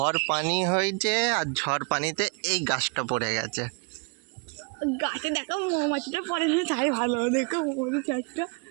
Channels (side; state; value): left; quieter; 36.0 dB